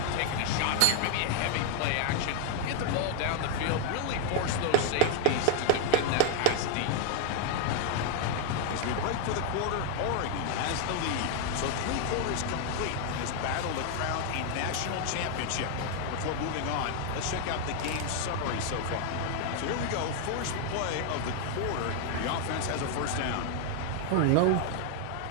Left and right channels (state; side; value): different; both; correlation 0.00